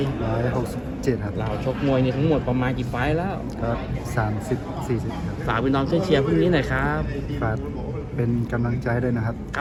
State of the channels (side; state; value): both; identical; correlation 1.00